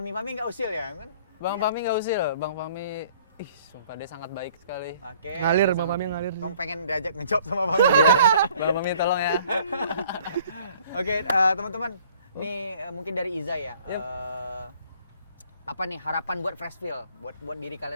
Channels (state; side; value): inverted; both; correlation -0.57